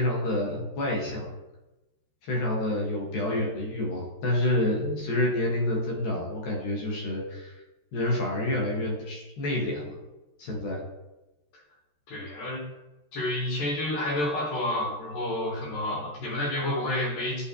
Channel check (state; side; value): late; right; 13 ms